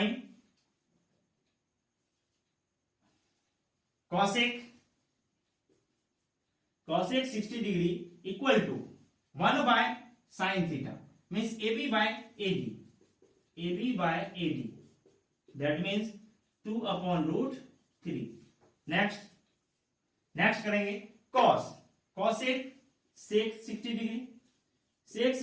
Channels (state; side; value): identical; both; correlation 1.00